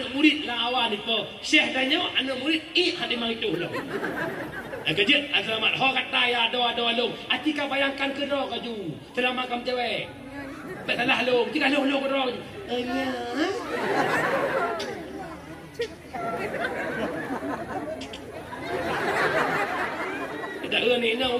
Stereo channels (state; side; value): identical; both; correlation 1.00